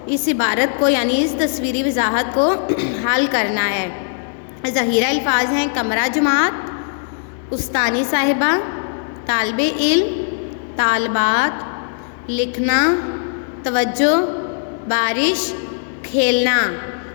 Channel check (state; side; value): silent; right; digital silence